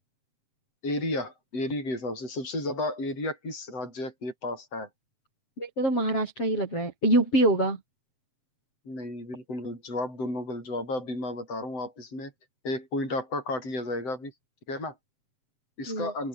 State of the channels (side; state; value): right; late; 7.8 ms